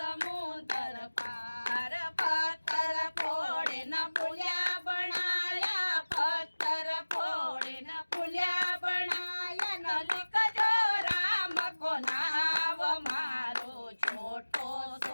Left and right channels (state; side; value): inverted; both; correlation -1.00